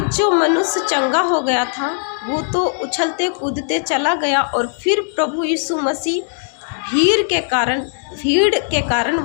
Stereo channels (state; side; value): silent; right; 66 dB below the other